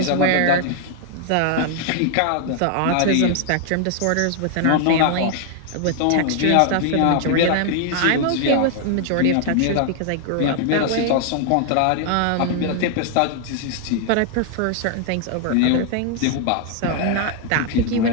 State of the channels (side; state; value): both; different; correlation 0.00